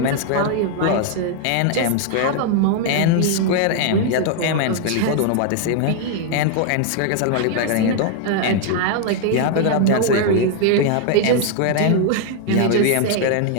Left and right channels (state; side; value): different; both; correlation 0.00